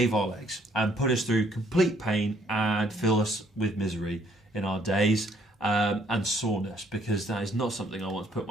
our legs and put us through complete pain and fill us with misery in our days. And soreness, because that is not something I want to put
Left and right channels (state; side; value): normal; both; correlation 0.65